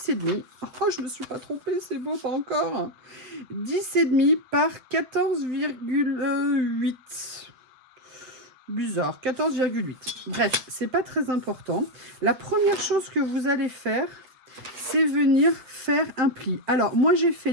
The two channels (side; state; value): left; late; 8.1 ms